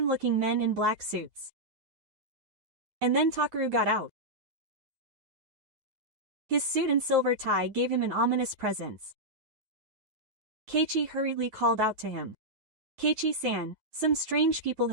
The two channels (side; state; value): left; late; 9.3 ms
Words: men in black suits. And then Takaru got out. His suit and silver tie gave him an ominous presence. Keiichi hurriedly called out to him. Keiichi-san, some strange people